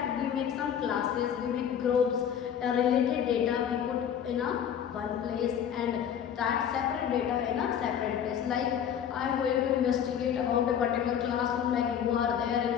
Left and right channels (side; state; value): right; quieter; 8.8 dB